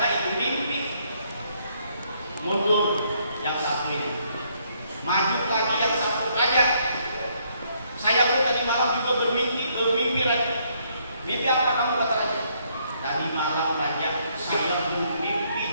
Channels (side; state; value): both; inverted; correlation -0.70